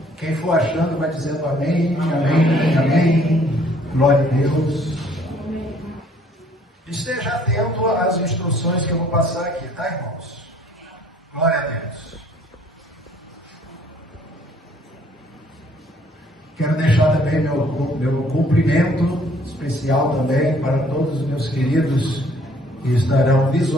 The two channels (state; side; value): normal; both; correlation 0.60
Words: Quem for achando vai dizendo amém, amém, amém. Glória a Deus. Esteja atento às instruções que eu vou passar aqui, tá, irmãos? Glória a Deus. Quero deixar também meu cumprimento especial também para todos os meus queridos que estarão